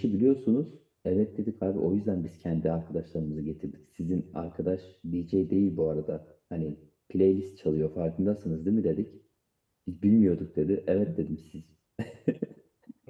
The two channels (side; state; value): both; identical; correlation 1.00